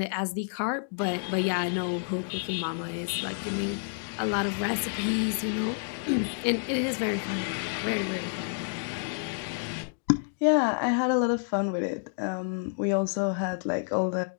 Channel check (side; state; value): right; silent; digital silence